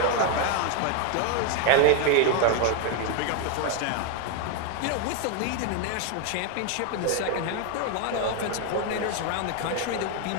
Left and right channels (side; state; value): both; different; correlation 0.01